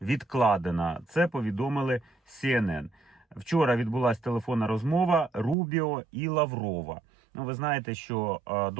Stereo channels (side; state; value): left; drops out; at 5.6 s